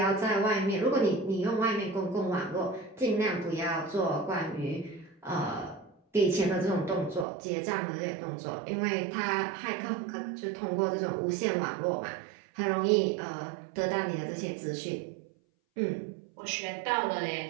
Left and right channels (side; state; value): left; drops out; at 7.2 s